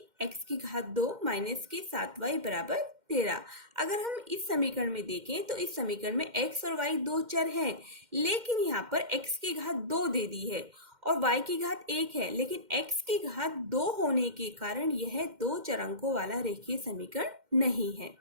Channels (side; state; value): left; late; 2.1 ms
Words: की घात 2 माइनस के 7y बराबर 13। अगर हम इस समीकरण में देखें तो इस समीकरण में x और y दो चर हैं, लेकिन यहाँ पर x की घात 2 दे दी है और y की घात 1 है, लेकिन x की घात 2 होने के कारण यह दो चरांकों वाला रेखीय समीकरण नहीं है।